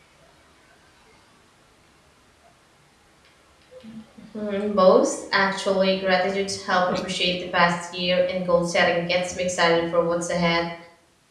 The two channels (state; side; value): identical; both; correlation 1.00